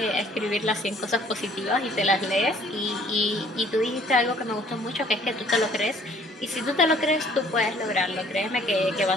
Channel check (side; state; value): both; normal; correlation 0.58